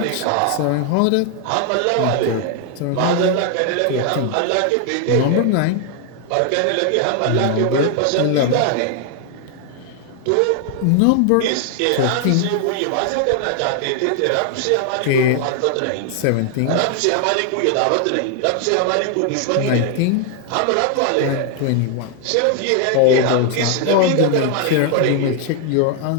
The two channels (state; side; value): different; both; correlation 0.00